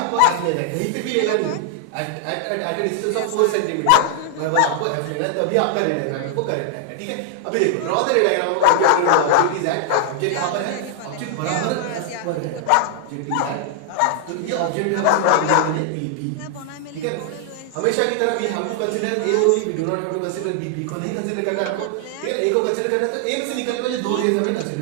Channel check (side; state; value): both; different; correlation 0.00